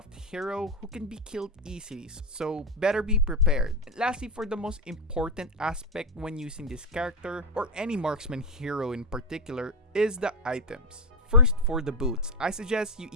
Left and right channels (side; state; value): both; normal; correlation 0.10